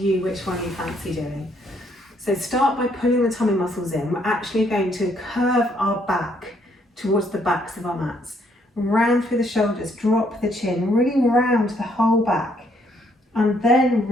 which one you fancy doing. So start by pulling the tummy muscles in. We're actually going to curve our back towards the backs of our mats. Round through the shoulders, drop the chin, really round the whole back. And then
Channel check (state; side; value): normal; both; correlation 0.69